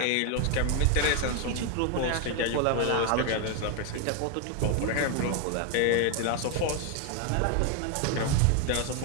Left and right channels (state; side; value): different; both; correlation 0.01